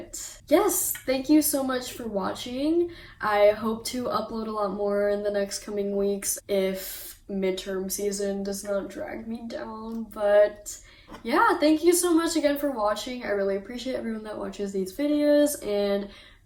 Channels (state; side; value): identical; both; correlation 1.00